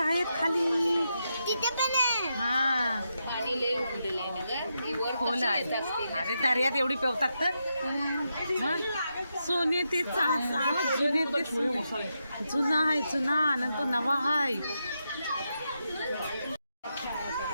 खाली. तिथे पण आहे. हा, खोल आहे. अरे दर्यात एवढी पेवतात तर. सोने ते जुने ते जुना आहे. जुना नंतर नवा आहे.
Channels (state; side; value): inverted; both; correlation -0.85